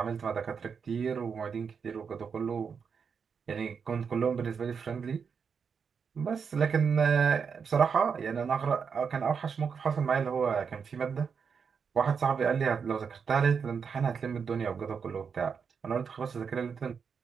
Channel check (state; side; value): quieter; left; 6.2 dB